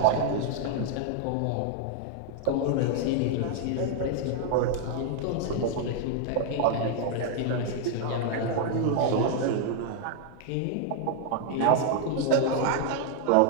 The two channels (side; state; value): both; different; correlation 0.00